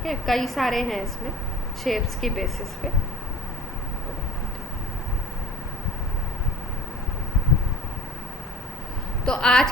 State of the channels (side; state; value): both; normal; correlation 0.42